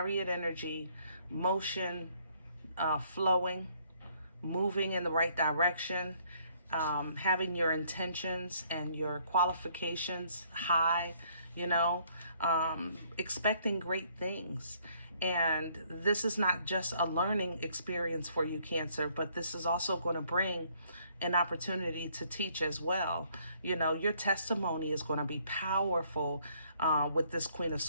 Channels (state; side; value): inverted; both; correlation -0.65